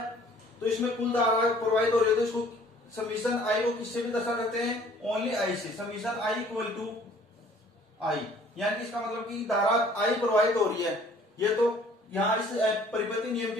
तो इसमें कुल धारा प्रवाहित हो रही है, तो इसको समीशन आई को किससे भी दर्शा करते हैं, ओनली आई से। समीशन आई इक्वल टू आई, यानी इसका मतलब कि धारा आई प्रवाहित हो रही है। ये तो यहाँ इस परिपति नियम के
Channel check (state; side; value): normal; both; correlation 0.55